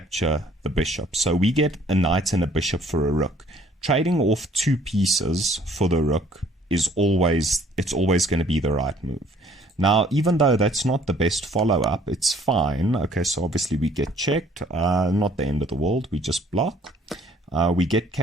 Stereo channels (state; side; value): normal; both; correlation 0.60